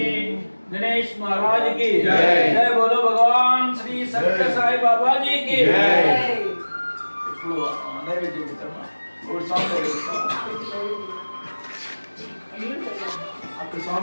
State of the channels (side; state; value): both; inverted; correlation -1.00